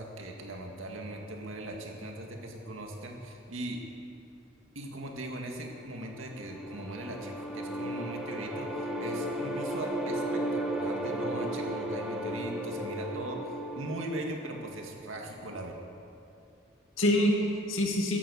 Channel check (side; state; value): both; normal; correlation 0.51